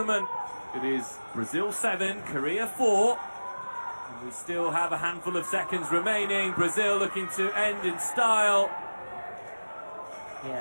It is Brazil 7, Korea 4. And we still have a handful of seconds remaining. Brazil looking to end in style.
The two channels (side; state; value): both; inverted; correlation -1.00